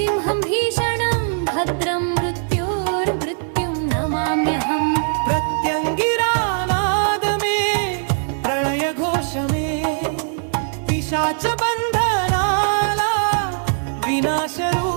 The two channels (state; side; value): silent; left; digital silence